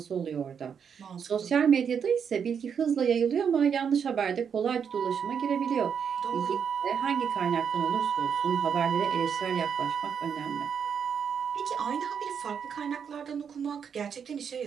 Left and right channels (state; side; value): quieter; left; 7.2 dB